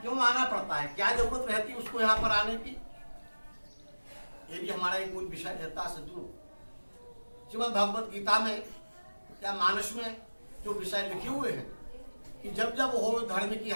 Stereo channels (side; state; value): both; inverted; correlation -1.00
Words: आना पड़ता है, क्या जरूरत रहती है उसको यहाँ पर आने की, ये भी हमारा एक मूल विषय रहता है। सज्जनों, श्रीमद् भगवत गीता में या मानस में जो विषय लिखे हुए हैं कि जब जब हो धर्म की